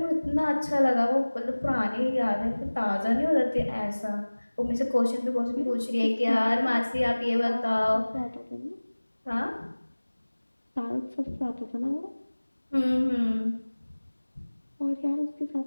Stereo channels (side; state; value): both; inverted; correlation -1.00